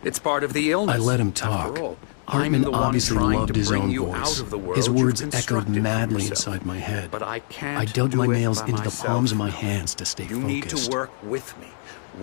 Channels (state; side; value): silent; right; 63 dB below the other